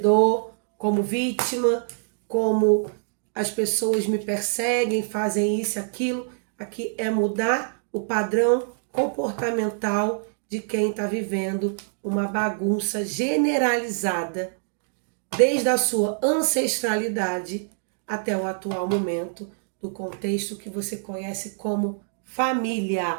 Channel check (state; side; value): silent; left; digital silence